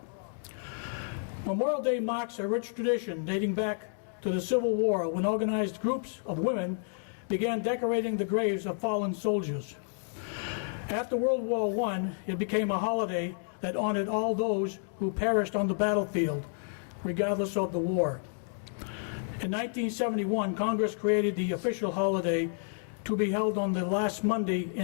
Memorial Day marks a rich tradition dating back to the Civil War, when organized groups of women began decorating the graves of fallen soldiers. After World War I, it became a holiday that honored all those who perished on the battlefield, regardless of the war. In 1971, Congress created the official holiday to be held on the last Monday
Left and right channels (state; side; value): silent; right; digital silence